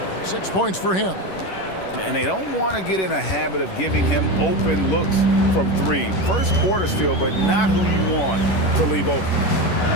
6 points for him. And they don't want to get in a habit of giving him open looks from 3. First quarter still, but not who you want to leave open.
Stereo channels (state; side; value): late; right; 11 ms